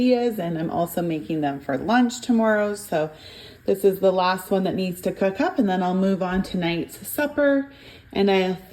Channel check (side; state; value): both; identical; correlation 1.00